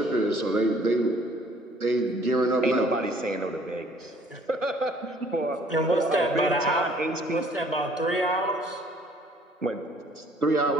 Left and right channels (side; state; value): both; normal; correlation 0.58